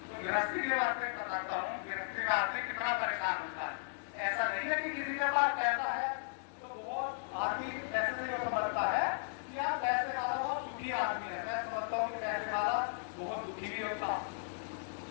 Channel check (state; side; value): silent; right; digital silence